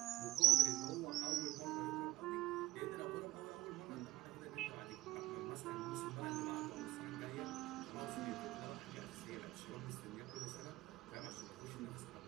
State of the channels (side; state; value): left; quieter; 15.7 dB